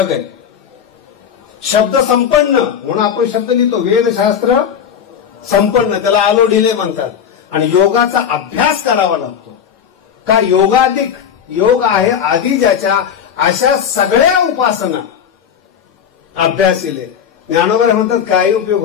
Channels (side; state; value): right; quieter; 8.1 dB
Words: आहे. शब्द संपन्न म्हणून आपण शब्द लिहितो, वेदशास्त्र संपन्न त्याला आलो ढिले म्हणतात. आणि योगाचा अभ्यास करावा लागतो. का योगाधिक योग आहे आधी ज्याच्या, अशा सगळ्या उपासना अभ्यासिले. ज्ञानोबराय म्हणतात काही उपयोग